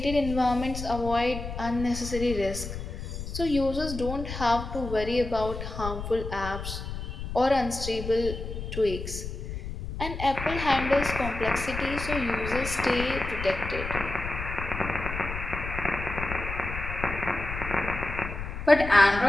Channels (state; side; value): noise; left; rumble, 7 dB below the sound